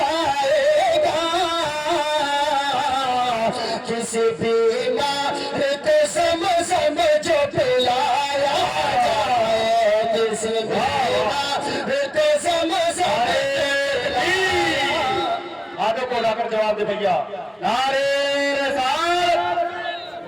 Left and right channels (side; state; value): both; identical; correlation 1.00